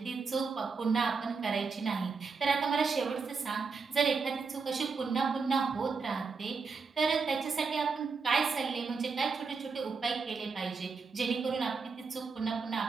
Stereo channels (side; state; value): left; quieter; 4.9 dB